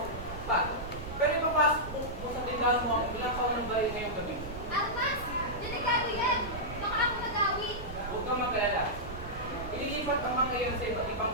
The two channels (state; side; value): noise; right; rumble, 10 dB below the sound